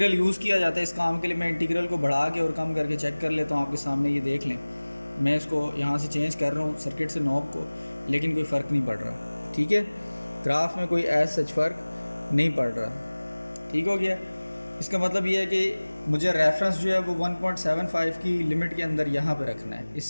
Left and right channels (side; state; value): both; inverted; correlation -1.00